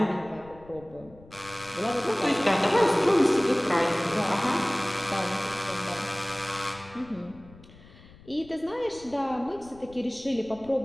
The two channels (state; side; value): noise; left; rumble, 22 dB below the sound